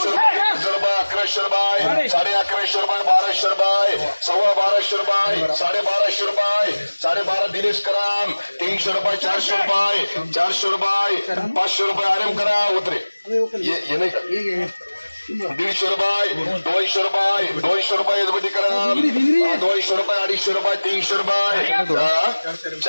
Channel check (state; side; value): inverted; both; correlation -1.00